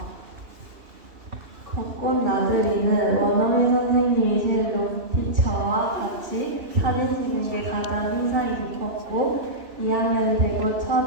벚꽃 나들이는 원어민 선생님이신 룸티처와 같이 사진 찍는 게 가장 인상이 깊었고 2학년 되고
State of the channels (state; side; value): late; left; 3.0 ms